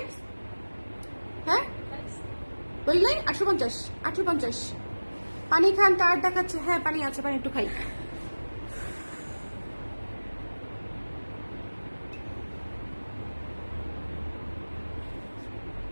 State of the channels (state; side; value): inverted; both; correlation -1.00